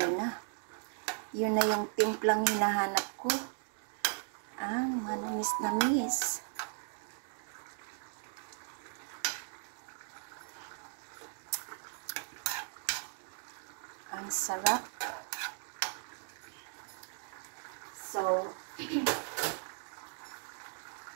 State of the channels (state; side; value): silent; left; 53 dB below the other